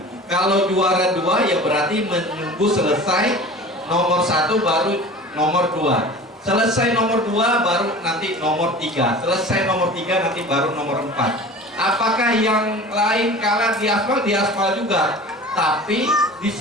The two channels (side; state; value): both; normal; correlation 0.39